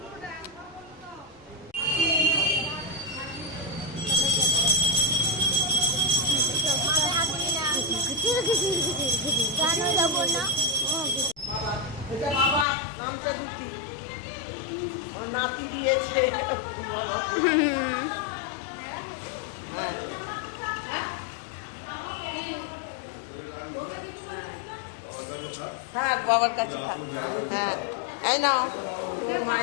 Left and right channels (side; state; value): right; drops out; at 12.7 s